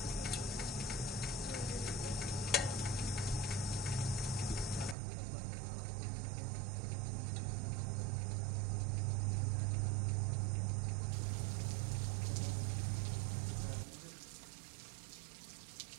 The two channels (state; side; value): drops out; left; at 5.0 s